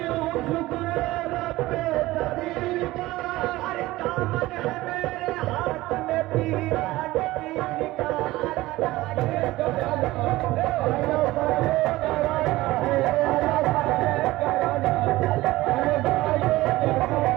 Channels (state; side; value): quieter; left; 18.1 dB